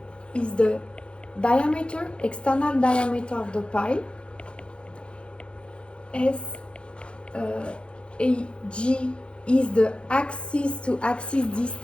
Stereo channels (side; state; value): right; late; 0.056 ms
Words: is the diameter, external diameter of the pile. AG is the axis to axis